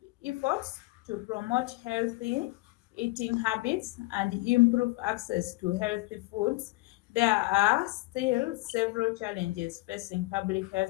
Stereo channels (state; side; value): quieter; right; 22.7 dB